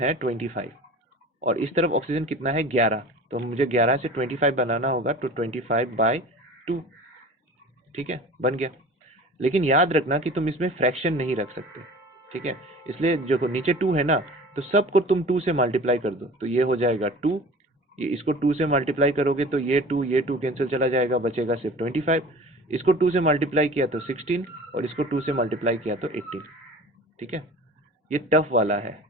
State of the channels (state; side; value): normal; both; correlation 0.40